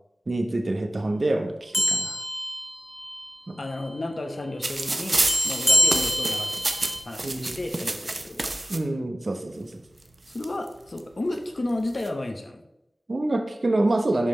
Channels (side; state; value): both; normal; correlation 0.97